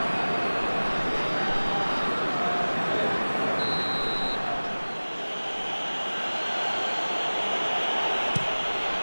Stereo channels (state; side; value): inverted; both; correlation -1.00